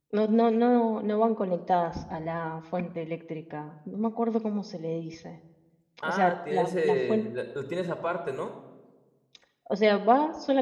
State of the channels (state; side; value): identical; both; correlation 1.00